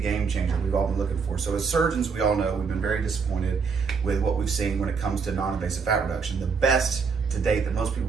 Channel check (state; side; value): quieter; left; 5.4 dB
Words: changer we've all been looking for. So as surgeons, we all know we've been very disappointed with what we've seen when it comes to non-invasive fat reduction. The best to date that most people